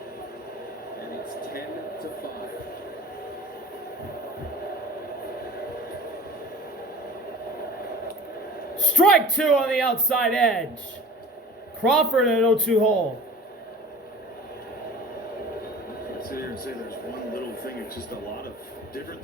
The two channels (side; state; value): both; normal; correlation 0.41